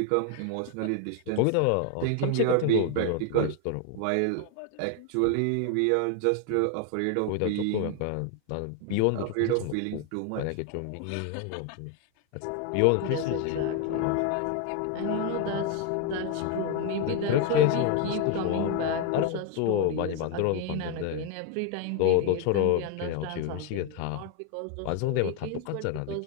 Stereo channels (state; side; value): different; both; correlation 0.01